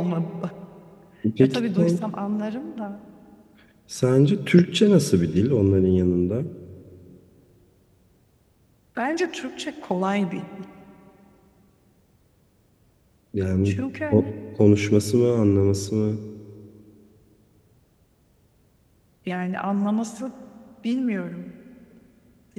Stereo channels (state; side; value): identical; both; correlation 1.00